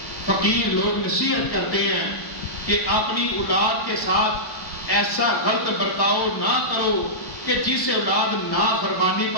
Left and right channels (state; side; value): late; right; 1.1 ms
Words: فقیر لوگ نصیحت کرتے ہیں کہ اپنی اولاد کے ساتھ ایسا غلط برتاؤ نہ کرو کہ جس سے اولاد نافرمانی